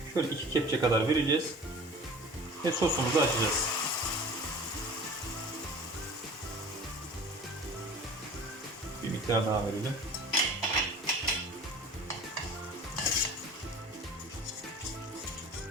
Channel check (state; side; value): normal; both; correlation 0.42